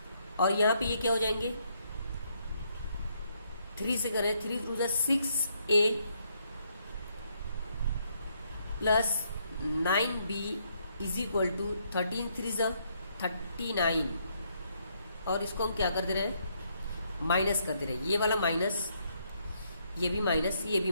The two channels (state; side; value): inverted; both; correlation -0.73